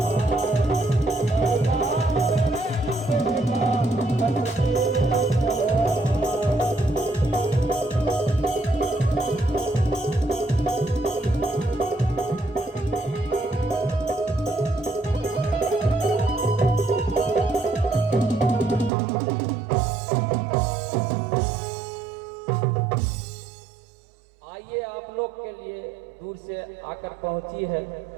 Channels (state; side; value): drops out; left; at 18.9 s